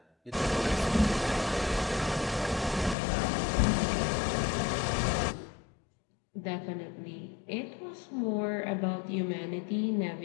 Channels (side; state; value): right; drops out; at 3.0 s